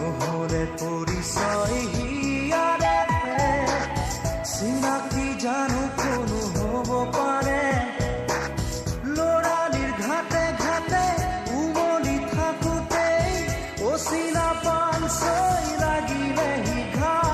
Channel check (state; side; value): identical; both; correlation 1.00